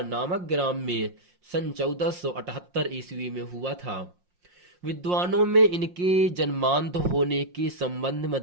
नामक ग्राम में सन 1478 ईस्वी में हुआ था। विद्वानों में इनके जन्मांध होने के संबंध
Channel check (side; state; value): left; late; 5.6 ms